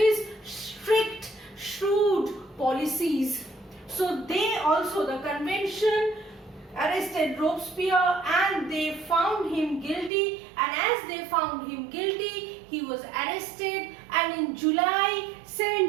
strict, shrewd policies. So they also, the convention arrested Robespierre and they found him guilty, and as they found him guilty, he was arrested, and in July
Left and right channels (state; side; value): drops out; left; at 10.1 s